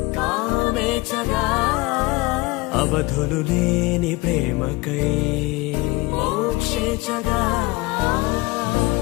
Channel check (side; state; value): right; quieter; 22.5 dB